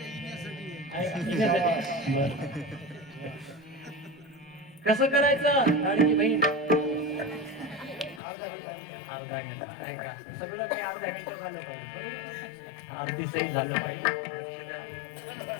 कसं करायचं लाडकी बहीण अर्धा घंटा नाही का सगळं काही अर्ध्या घंटा झालं पाहिजे. अर्धी सही झालं पाहिजे.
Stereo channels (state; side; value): drops out; right; at 8.2 s